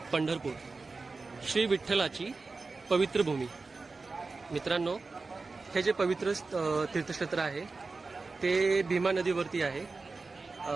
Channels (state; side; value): quieter; left; 3.9 dB